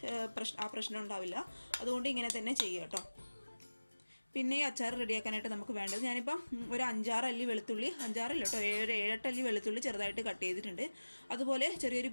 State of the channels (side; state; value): both; inverted; correlation -1.00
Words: ആ പ്രശ്നം ഉണ്ടാവില്ല. അതുകൊണ്ട് ഇങ്ങനെ തന്നെ ചെയ്യുക കേട്ടോ. പിന്നെ ഈ അച്ചാർ റെഡിയാക്കാനായിട്ട് നമുക്ക് വേണ്ടത്, ഞാനിപ്പം ഒരു 5-6 അല്ലി വെളുത്തുള്ളി, 5-6 അല്ല കേട്ടോ, 7-8 അല്ലി വെളുത്തുള്ളി ചെറുതായിട്ട് കട്ട് ചെയ്തിട്ടുണ്ട്. അതുപോലെ ചെറിയൊരു